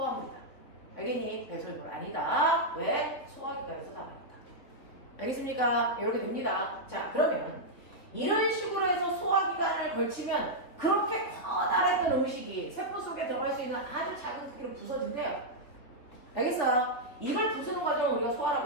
알겠니? 배설물 아니다. 왜? 소화기관에서 나가니까. 알겠습니까? 이렇게 됩니다. 자, 그러면 이런 식으로 해서 소화기관을 걸치면 그렇게 커다랬던 음식이 세포 속에 들어갈 수 있는 아주 작은 크기로 부서진대요. 알겠어? 이걸 부수는 과정을 우리가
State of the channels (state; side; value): late; right; 3.6 ms